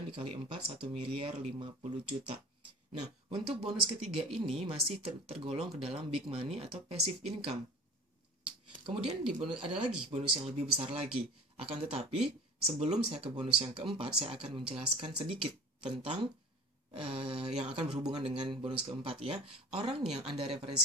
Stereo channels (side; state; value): both; normal; correlation 0.40